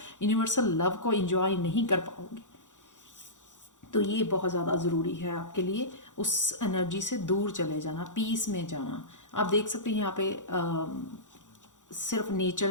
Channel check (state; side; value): late; right; 0.86 ms